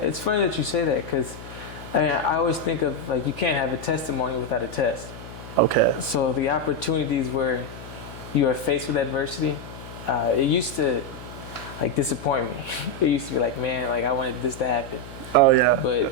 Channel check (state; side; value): noise; left; hum, 14 dB below the sound